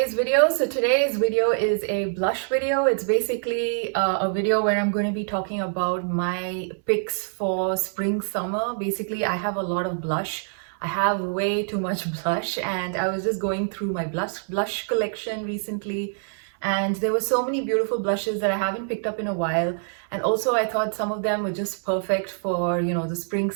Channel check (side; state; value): left; silent; 61 dB below the other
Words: video. So today's video is a blush video. It's basically a video where I'm going to be talking about my picks for spring summer. Basically, I have a lot of blush. I have way too much blush, and I was just going through my blush collection recently, and there were so many beautiful blushes that I haven't picked up in a while. And also I thought some of them were just perfect for, the spring